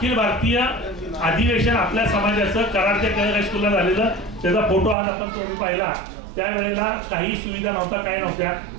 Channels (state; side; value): drops out; left; at 5.0 s